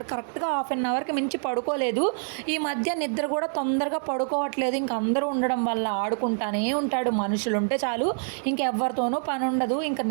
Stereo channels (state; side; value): silent; left; 61 dB below the other